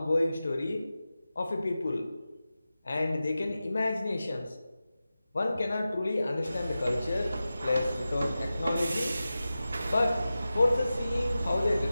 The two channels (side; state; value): both; inverted; correlation -0.94